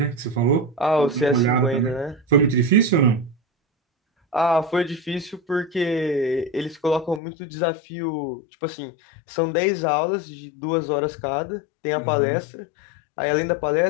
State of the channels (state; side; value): drops out; right; at 7.2 s